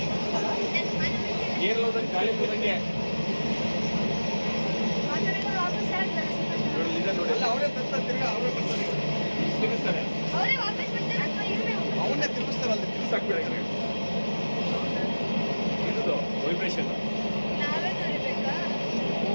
ಏರ್ಲೋದಂಗೆ ಗಾಳಿ ಹೋದಂಗೆ ನೋಡಿ ಅವರೇ ತಿರ್ಗಾ ಅವರೇ ಬರ್ತಾರೆ ತಿರುಗಿಸ್ತಾರೆ ಅವನ್ನೇ ತಿರುಗಿಸ್ತಾರೆ ಅಲ್ಲಿ ತಿರುಗಿಸಾಕ್ಬಿಡ ಇದು ವೈಬ್ರೇಷನ್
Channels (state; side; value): inverted; both; correlation -1.00